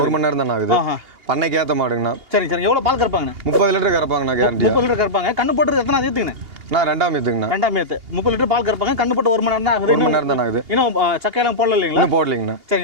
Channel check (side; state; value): left; late; 2.8 ms